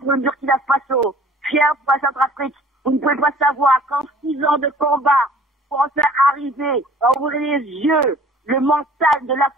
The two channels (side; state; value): both; normal; correlation 0.50